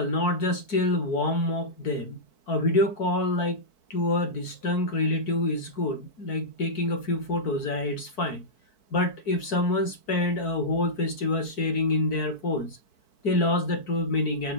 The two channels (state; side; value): late; right; 4.6 ms